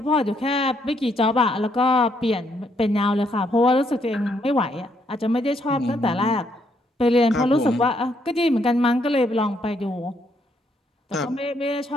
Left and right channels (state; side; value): normal; both; correlation 0.73